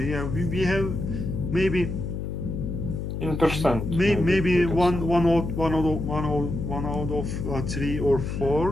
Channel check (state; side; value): noise; left; hum, 4 dB below the sound